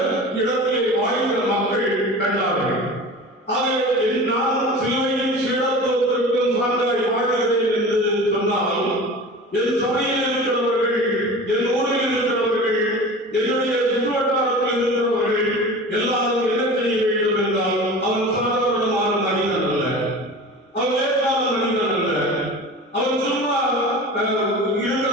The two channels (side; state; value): both; normal; correlation 0.35